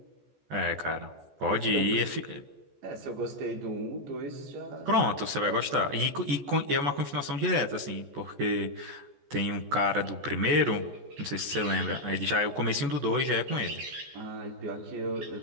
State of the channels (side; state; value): left; late; 14 ms